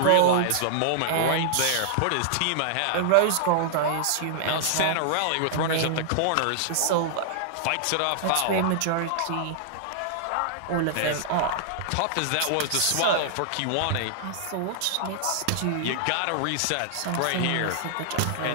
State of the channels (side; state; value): both; different; correlation -0.01